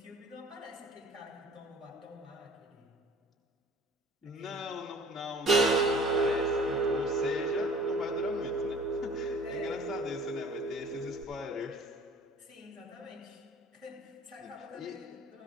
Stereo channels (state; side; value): normal; both; correlation 0.48